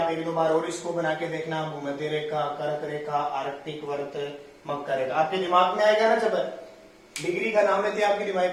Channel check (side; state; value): both; identical; correlation 1.00